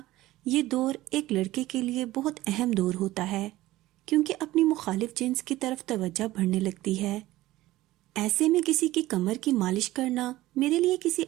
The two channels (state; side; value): quieter; left; 16.8 dB